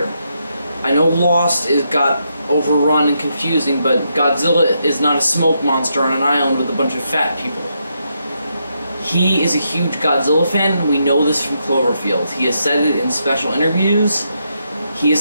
I know Lost got overrun and confusing, but Godzilla is not a smoke monster on an island with a bunch of fat people. He is a huge Godzilla fan. We know this from Cloverfield. He has said it in special interviews. He is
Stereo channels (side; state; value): both; inverted; correlation -0.81